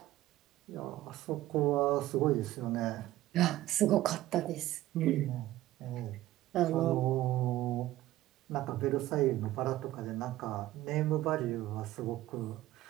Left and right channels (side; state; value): left; quieter; 15.4 dB